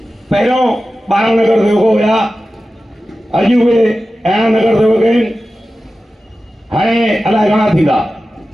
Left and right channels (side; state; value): both; normal; correlation 0.94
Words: पहिरियों 12 नगर सेवक हुया, अॼु उहे 11 नगर सेवक आहिनि, हाणे अलाए घणा थींदा।